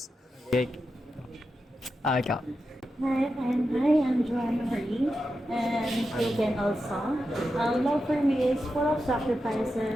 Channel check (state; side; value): normal; both; correlation 0.89